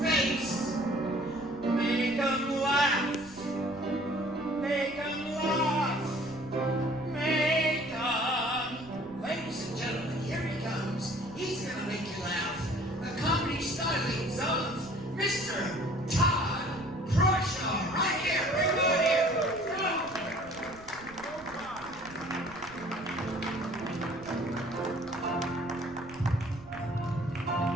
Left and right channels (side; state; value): right; noise; rumble, 21 dB below the sound